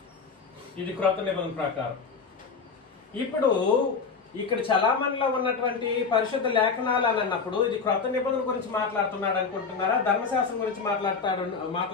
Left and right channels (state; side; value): quieter; right; 5.2 dB